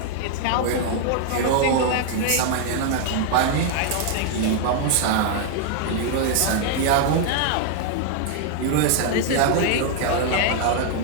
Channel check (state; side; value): different; both; correlation 0.00